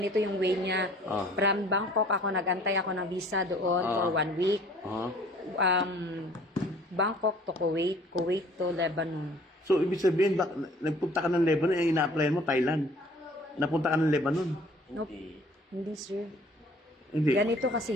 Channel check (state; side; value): normal; both; correlation 0.53